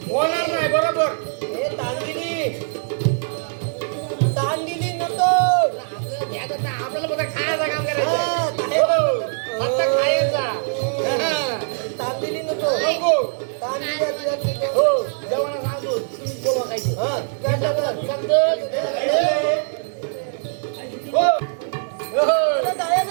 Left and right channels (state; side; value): silent; left; digital silence